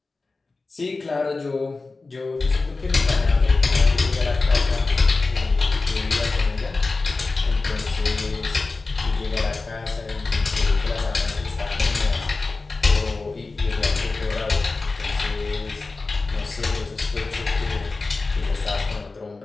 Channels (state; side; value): quieter; right; 3.7 dB